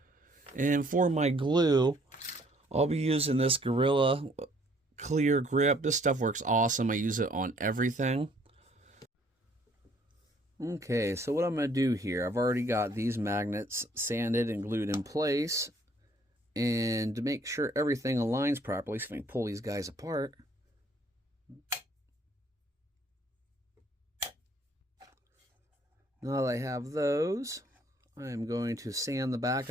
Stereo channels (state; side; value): normal; both; correlation 0.62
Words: And for my glue, I'll be using this Gorilla Clear Grip. This stuff works awesome. I use it on everything. Okay, so what I'm going to do here, I've already got these magnets sanded and glued in place. And to make sure everything aligns properly, so I can pull these guys apart. Now that I have those, I'm going to sand the back